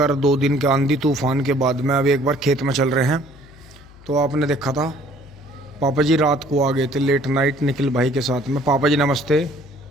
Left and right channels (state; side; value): noise; left; hum, 23 dB below the sound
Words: 2 दिन के आंधी तूफान के बाद में अभी एक बार खेत में चल रहे हैं। तो आपने देखा था पापा जी रात को आ गए थे लेट नाइट निखिल भाई के साथ में। पापा जी नमस्ते।